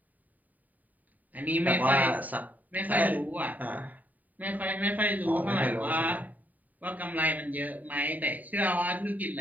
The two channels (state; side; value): late; left; 0.080 ms